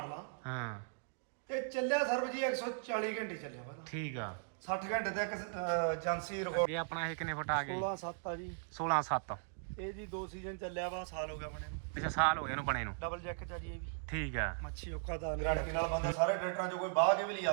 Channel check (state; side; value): silent; left; digital silence